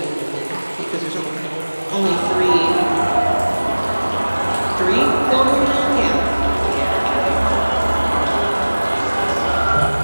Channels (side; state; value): both; inverted; correlation -1.00